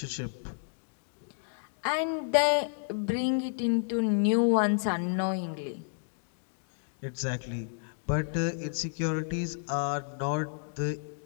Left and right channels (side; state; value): right; silent; digital silence